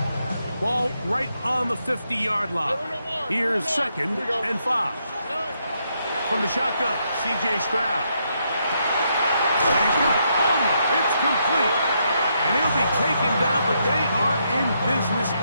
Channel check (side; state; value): both; inverted; correlation -0.78